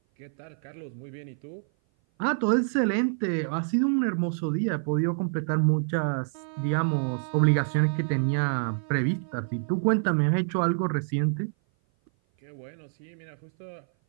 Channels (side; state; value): left; silent; 57 dB below the other